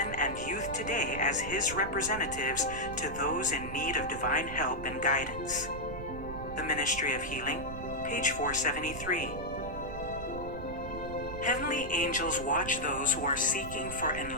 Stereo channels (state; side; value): noise; right; rumble, 9 dB below the sound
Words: and youth today as his representatives to those in need of divine help and guidance. The Ministry of Healing, page 473. Heavenly angels watch those who are seeking for